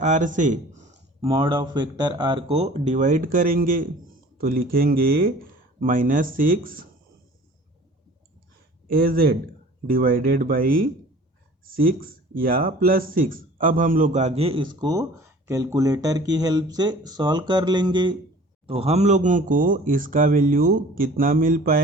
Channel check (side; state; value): both; normal; correlation 0.47